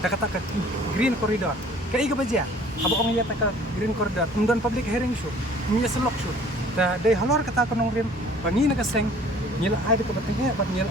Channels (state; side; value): normal; both; correlation 0.52